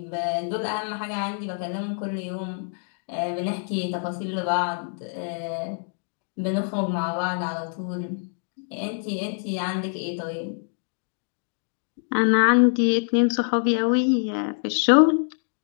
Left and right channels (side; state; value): right; silent; 61 dB below the other